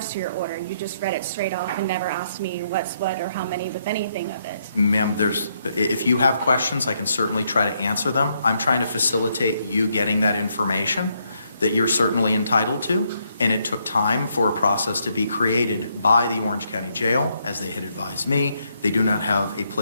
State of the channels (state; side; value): inverted; both; correlation -0.75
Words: to your order. You just read it straight off and never asked me what's what or how many with anything of it. Ma'am, if you have questions, I can certainly try to answer them. I'm trying to facilitate you getting that information that you're certainly entitled to, and it took time for a process to be created by the Orange County Jail, as they had advised me. They do not have a